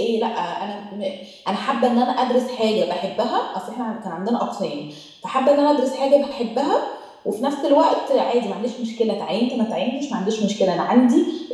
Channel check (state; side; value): identical; both; correlation 1.00